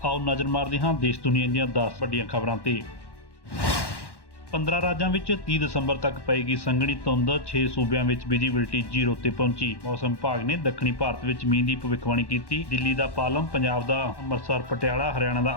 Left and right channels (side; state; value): right; late; 1.1 ms